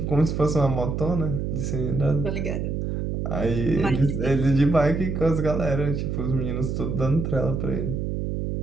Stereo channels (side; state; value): right; noise; hum, 2 dB below the sound